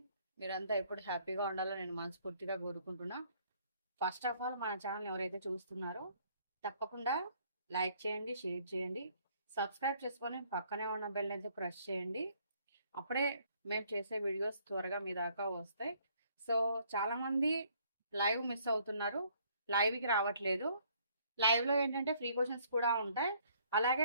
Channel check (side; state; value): both; inverted; correlation -0.64